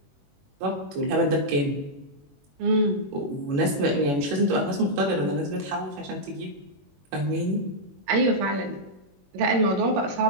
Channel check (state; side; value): late; left; 21 ms